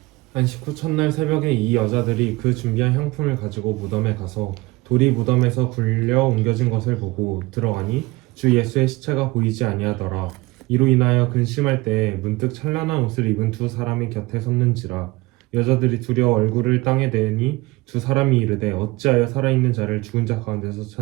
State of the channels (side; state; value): left; quieter; 21.5 dB